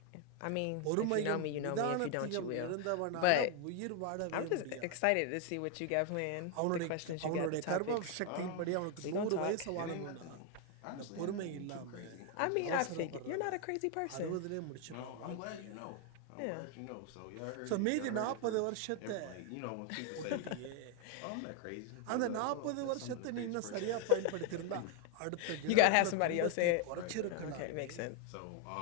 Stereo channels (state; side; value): different; both; correlation 0.01